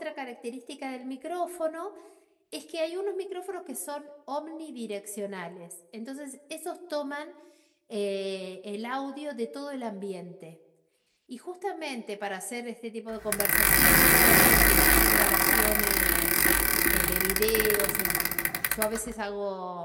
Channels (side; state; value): both; identical; correlation 1.00